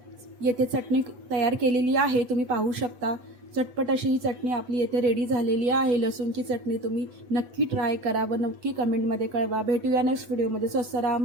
येथे चटणी तयार केलेली आहे, तुम्ही पाहू शकता। चटपट अशी ही चटणी आपली येथे रेडी झालेली आहे। लसूणची चटणी तुम्ही नक्की ट्राय करा व नक्की कमेंटमध्ये कळवा। भेटूया नेक्स्ट व्हिडिओमध्ये। स्वस्त राहा,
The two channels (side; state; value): left; late; 8.1 ms